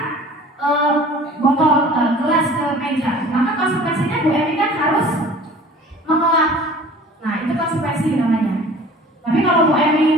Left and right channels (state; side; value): normal; both; correlation 0.46